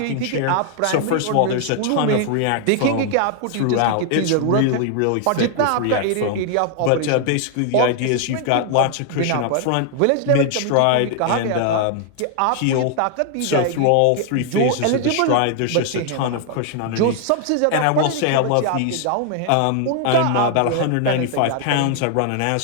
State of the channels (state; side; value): different; both; correlation 0.00